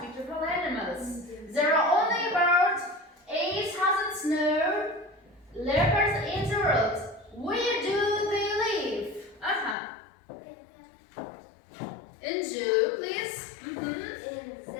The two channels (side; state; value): right; drops out; at 9.8 s